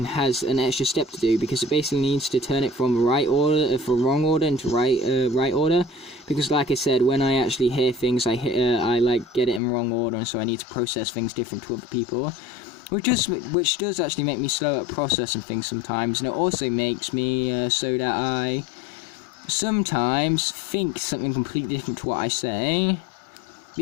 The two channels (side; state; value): right; drops out; at 9.6 s